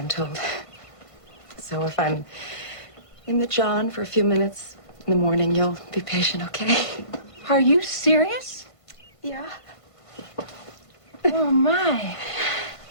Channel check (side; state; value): left; late; 1.2 ms